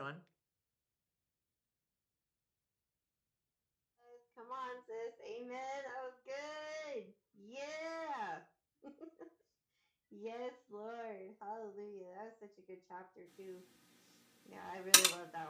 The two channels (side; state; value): both; identical; correlation 1.00